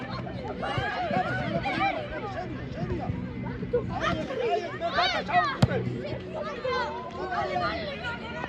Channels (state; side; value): identical; both; correlation 1.00